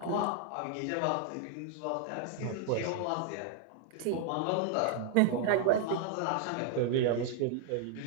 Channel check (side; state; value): both; different; correlation 0.00